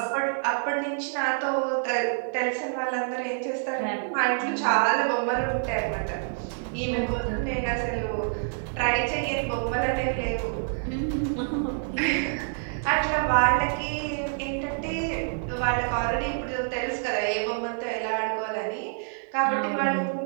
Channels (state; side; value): silent; left; 60 dB below the other